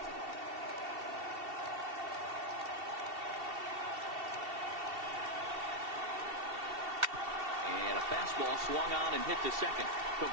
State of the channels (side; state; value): left; late; 2.7 ms